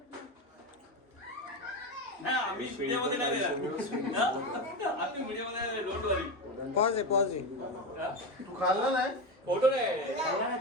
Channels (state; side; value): normal; both; correlation 0.17